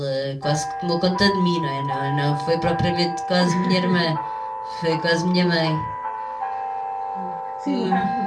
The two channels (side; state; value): both; identical; correlation 1.00